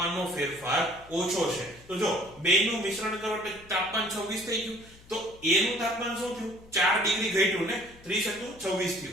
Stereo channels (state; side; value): noise; left; hum, 24 dB below the sound